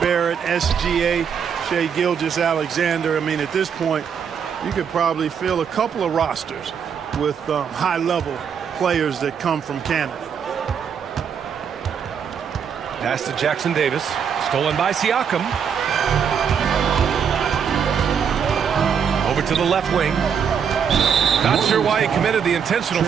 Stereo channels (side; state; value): left; quieter; 7.3 dB